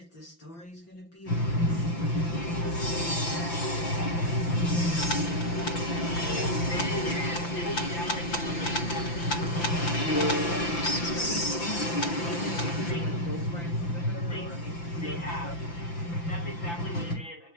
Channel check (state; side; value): late; right; 5.9 ms